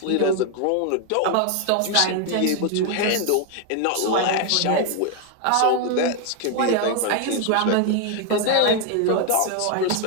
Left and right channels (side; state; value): both; different; correlation 0.01